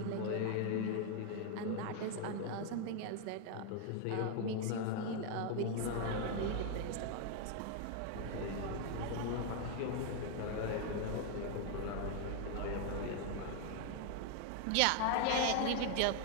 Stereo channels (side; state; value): both; different; correlation 0.00